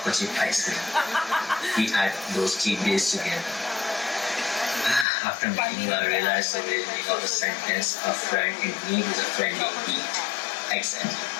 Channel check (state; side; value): drops out; right; at 5.1 s